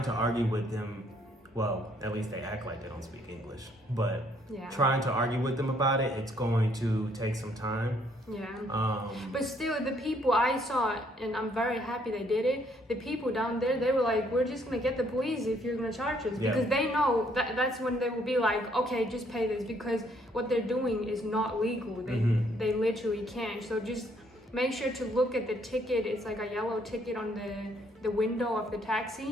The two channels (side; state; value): both; normal; correlation 0.67